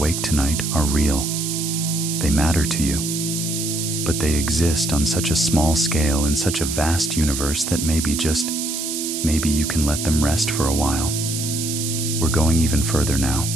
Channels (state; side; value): noise; right; hiss, 4 dB below the sound